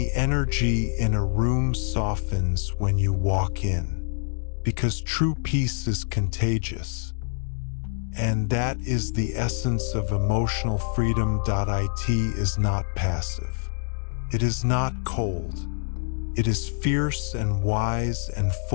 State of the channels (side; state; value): right; silent; digital silence